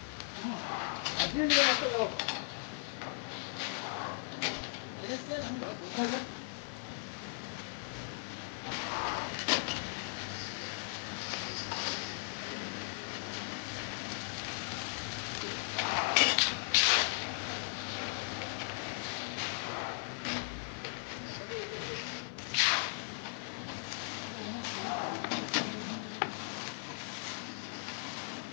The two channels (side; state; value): right; silent; 53 dB below the other